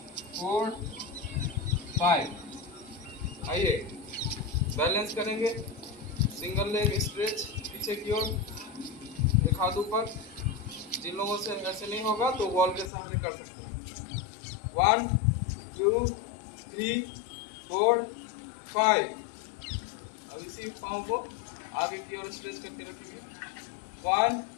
4 5। आइए बैलेंस करेंगे, सिंगल लेग स्ट्रेच पीछे की ओर, एक हाथ ऊपर। जिन लोगों से ऐसे नहीं होगा तो वॉल के सहारे कर सकते हैं। 1 2 3 4 5। अब इसी पाँव को आगे की ओर स्ट्रेच करके रखेंगे। 1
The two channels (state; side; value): drops out; right; at 12.9 s